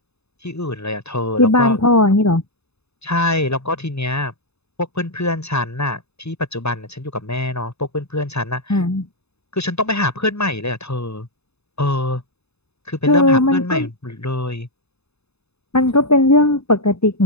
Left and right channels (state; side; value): late; right; 0.80 ms